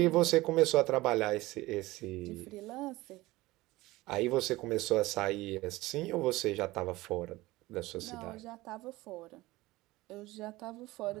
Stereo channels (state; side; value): quieter; left; 19.3 dB